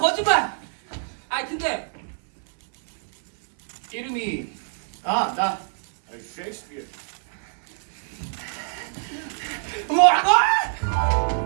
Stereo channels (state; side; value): silent; left; 62 dB below the other